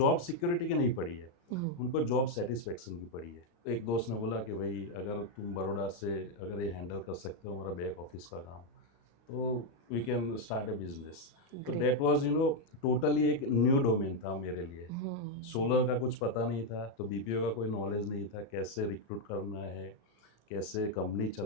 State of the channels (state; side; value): late; right; 35 ms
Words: security की नहीं पड़ी है, उनको जॉब सेटिस्फेक्शन की पड़ी है। एक दोस्त ने बोला कि भाई अगर तुम बड़ौदा से अगर ये हैंडल कर सकते हो हमारा बैक ऑफिस का काम, तो we can start a business. तो ग्रेट। डेट वाज टोटली एक न्यू डोमेन था मेरे लिए। सोलर का कुछ पता नहीं था, तो बीपीओ का कोई नॉलेज नहीं था, कैसे रिक्रूट करना है, कैसे कंपनी